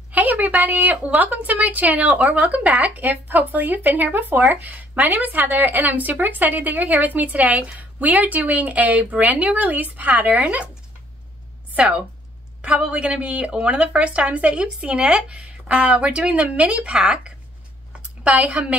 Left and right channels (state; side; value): normal; both; correlation 0.62